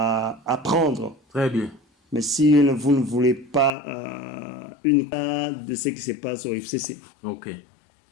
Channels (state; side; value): drops out; right; at 3.7 s